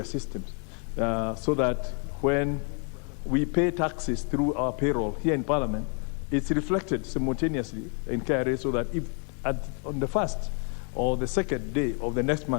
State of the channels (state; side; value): quieter; right; 39.6 dB